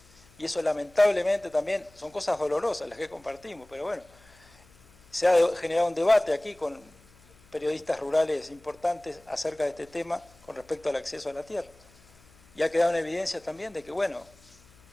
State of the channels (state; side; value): noise; left; hum, 28 dB below the sound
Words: Y eso lamentablemente también son cosas dolorosas las que compartimos, pero bueno, se ha generado un debate aquí con periodistas rurales importantes acerca de este tema con respecto al acceso a la tierra. Y ha quedado en evidencia también de que, bueno,